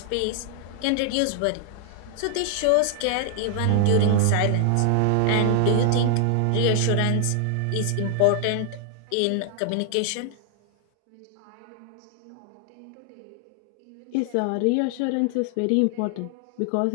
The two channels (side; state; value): both; different; correlation 0.00